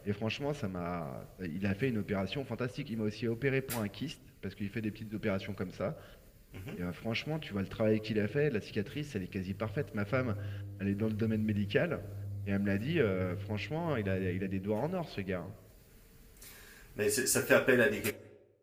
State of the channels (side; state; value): both; identical; correlation 1.00